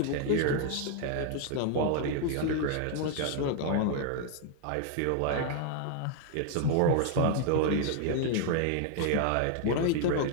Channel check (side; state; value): both; different; correlation 0.00